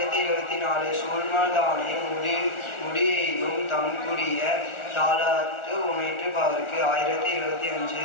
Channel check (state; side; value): late; right; 1.4 ms